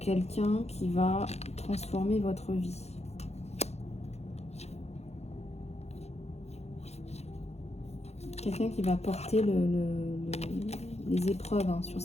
qui va transformer votre vie. Quelqu'un qui va porter les épreuves hein, sur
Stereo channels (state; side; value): late; right; 0.31 ms